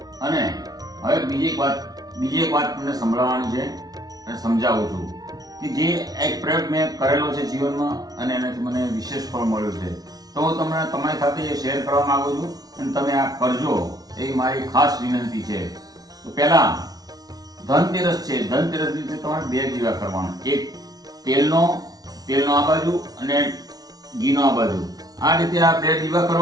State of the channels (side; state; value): left; late; 0.19 ms